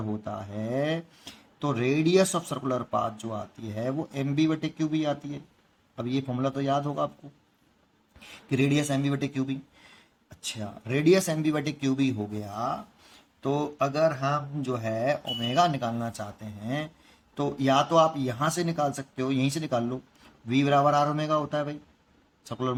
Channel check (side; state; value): both; identical; correlation 1.00